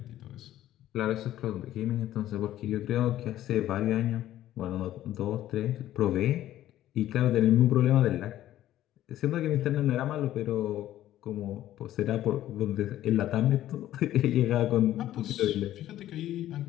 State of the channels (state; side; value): quieter; right; 13.3 dB